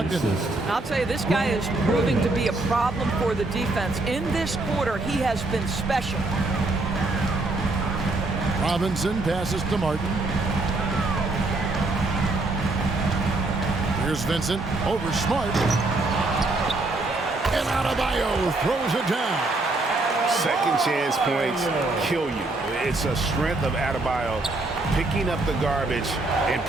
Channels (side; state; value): left; quieter; 3.1 dB